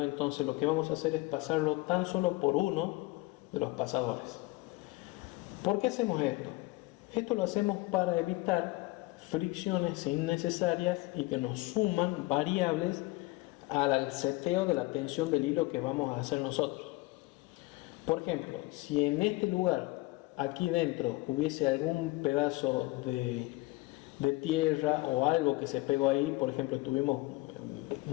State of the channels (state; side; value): quieter; right; 21.8 dB